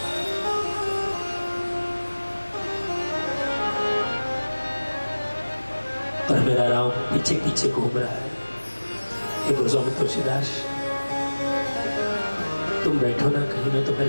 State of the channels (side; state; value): both; inverted; correlation -1.00